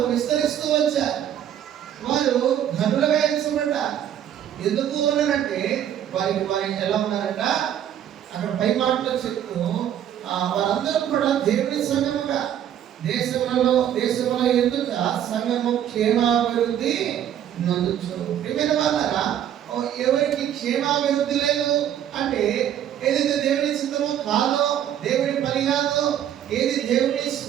విస్తరిస్తూ వచ్చారు. వారు ధనులుగా ఎంచబడ్డారు. ఎందుకు ఉన్నారంటే వారి ఎలా ఉన్నారంట, అక్కడ పై మాటలో చెప్తూ వారందరూ కూడా దేవుని సంఘముగా దేశంలో ఎందుకు సంఘము క్షేమాభివృద్ధి నొందుచు. ప్రియమైన వాళ్ళారా, ఎవరికి క్షేమాభివృద్ధి లేదు అంటే ఏదైతే దేవుని చిత్తమో కాదో, దేవుని పని కాదో, ఏది దేవుని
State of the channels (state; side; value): quieter; left; 10.4 dB